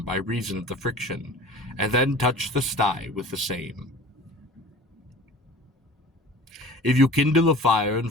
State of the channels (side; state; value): both; normal; correlation 0.41